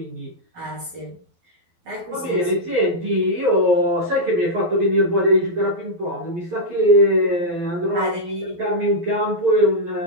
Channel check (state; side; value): late; left; 12 ms